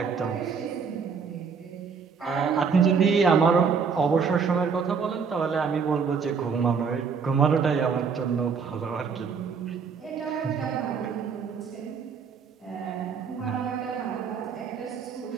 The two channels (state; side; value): quieter; left; 5.8 dB